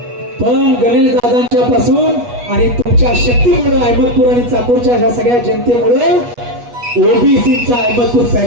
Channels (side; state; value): left; late; 8.3 ms